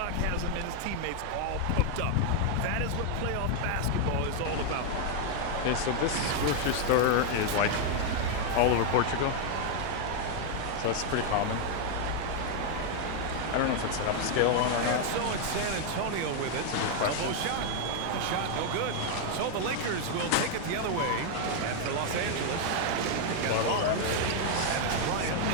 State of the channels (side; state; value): both; different; correlation 0.00